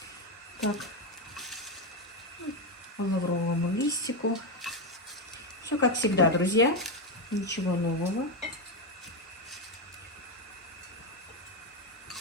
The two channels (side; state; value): both; normal; correlation 0.09